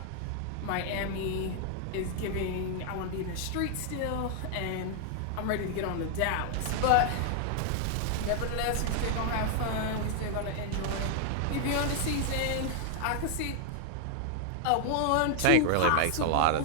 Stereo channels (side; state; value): both; different; correlation 0.00